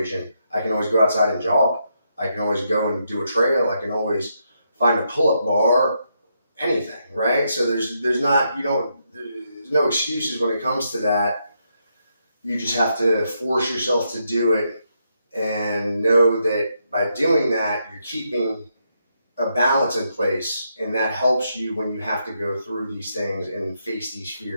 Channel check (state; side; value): inverted; both; correlation -0.80